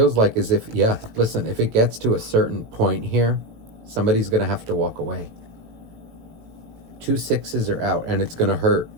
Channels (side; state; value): left; late; 18 ms